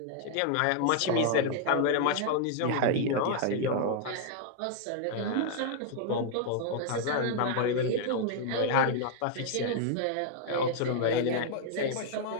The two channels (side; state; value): both; different; correlation 0.00